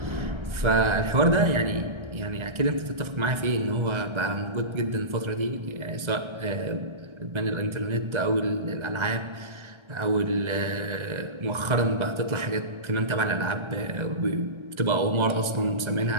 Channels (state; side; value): late; left; 1.3 ms